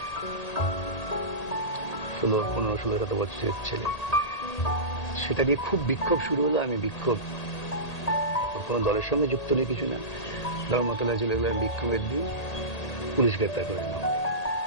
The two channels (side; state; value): right; late; 1.8 ms